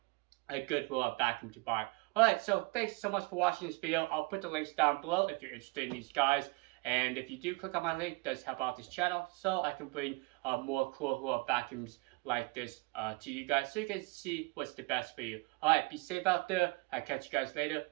a good vacuum to buy. Alright, so thanks so much for watching this video. I'll put the links down below if you're interested in these guys. And if you do click on my link, it does help out this channel so I can bring more cool vacuums like this to you guys so you can see what's the best for you. Alright, be safe out there. I'll catch you guys later.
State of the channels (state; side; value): quieter; left; 25.9 dB